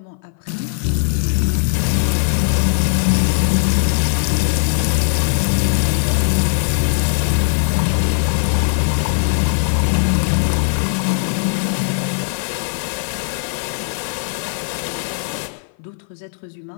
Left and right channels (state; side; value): silent; right; 57 dB below the other